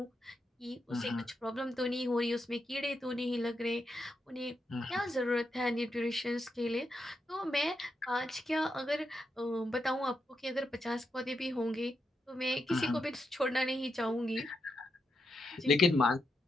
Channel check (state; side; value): normal; both; correlation 0.84